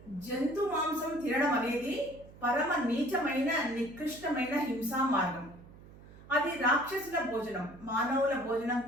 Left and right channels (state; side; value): noise; right; hum, 20 dB below the sound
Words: జంతు మాంసం తినడం అనేది పరమ నీచమైన, నికృష్టమైన హింసా మార్గం. అది రాక్షసుల భోజనం, మానవుల భోజనం